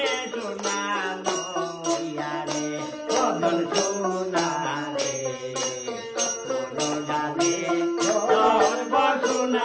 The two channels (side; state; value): both; identical; correlation 1.00